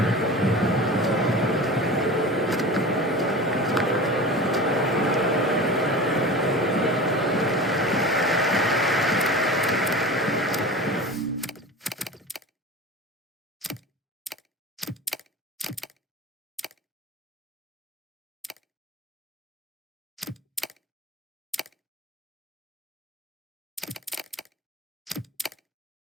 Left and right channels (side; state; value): both; normal; correlation 0.33